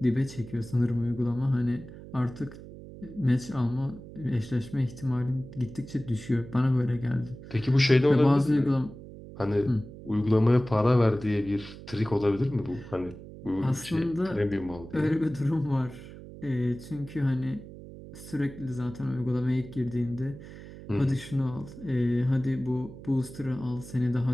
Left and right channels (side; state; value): right; noise; hum, 15 dB below the sound